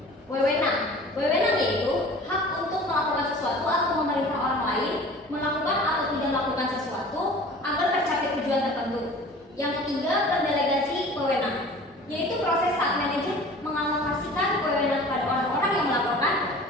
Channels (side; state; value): both; normal; correlation 0.43